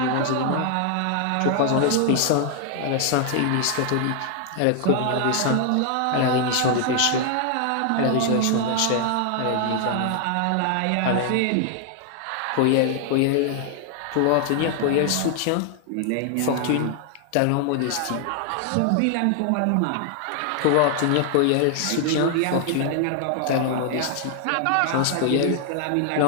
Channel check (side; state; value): both; different; correlation 0.00